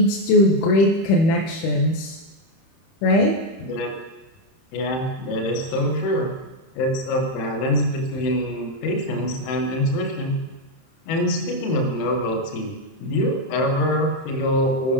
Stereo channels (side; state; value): right; late; 31 ms